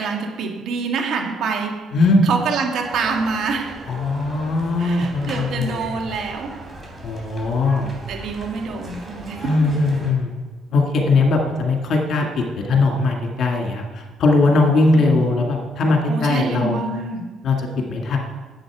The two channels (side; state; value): both; normal; correlation 0.73